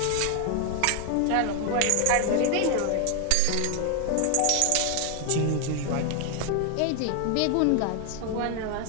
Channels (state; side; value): different; both; correlation 0.00